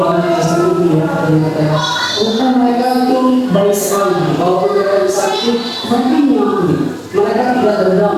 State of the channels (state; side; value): identical; both; correlation 1.00